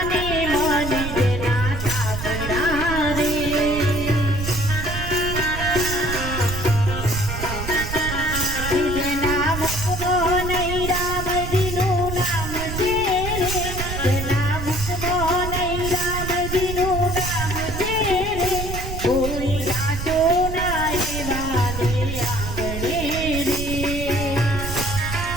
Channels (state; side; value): noise; right; rumble, 5 dB below the sound